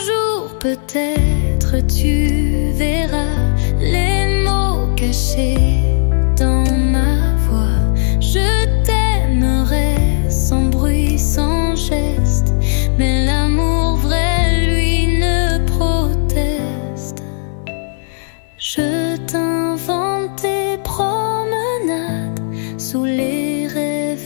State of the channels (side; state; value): right; silent; digital silence